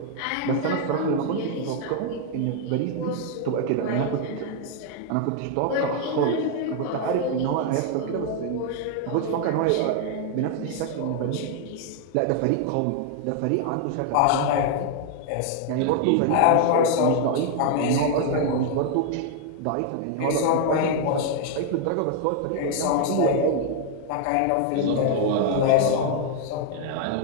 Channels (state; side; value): different; both; correlation 0.00